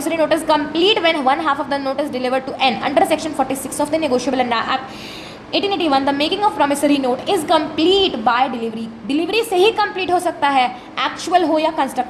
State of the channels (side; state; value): both; identical; correlation 1.00